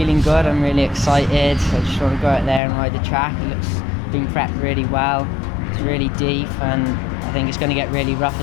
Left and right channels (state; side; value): drops out; right; at 2.6 s